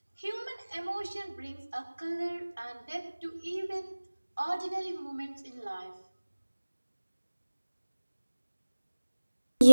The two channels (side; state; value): both; inverted; correlation -1.00